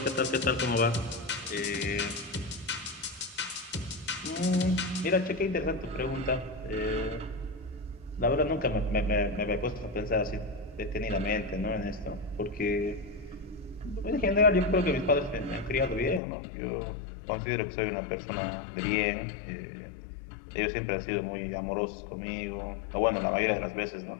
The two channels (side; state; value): right; drops out; at 16.2 s